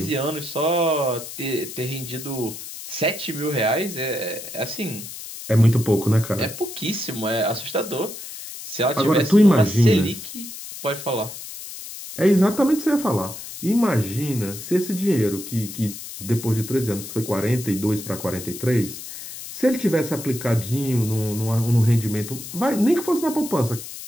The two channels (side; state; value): left; noise; hiss, 11 dB below the sound